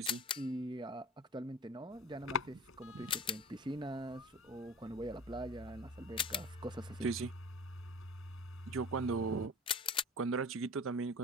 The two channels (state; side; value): normal; both; correlation 0.37